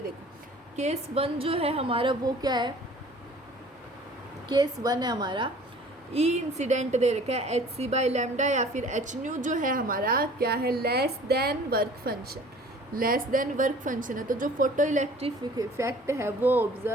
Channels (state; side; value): normal; both; correlation 0.49